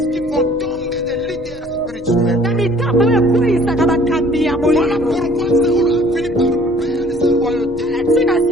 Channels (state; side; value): normal; both; correlation 0.55